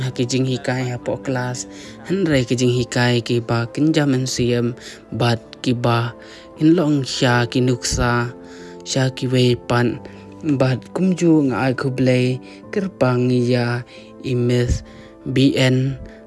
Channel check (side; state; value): both; identical; correlation 1.00